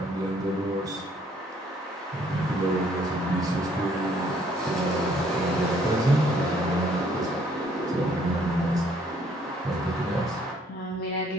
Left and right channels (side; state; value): both; normal; correlation 0.64